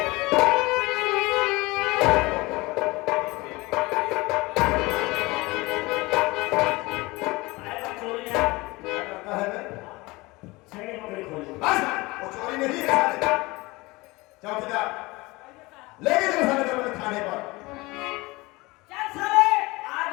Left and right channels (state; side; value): quieter; right; 22.5 dB